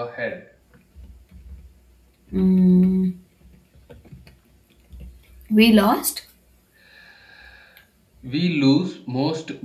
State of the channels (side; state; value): both; identical; correlation 1.00